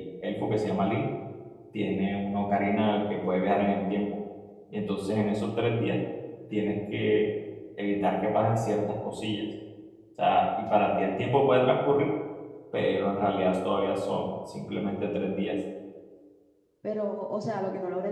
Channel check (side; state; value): both; identical; correlation 1.00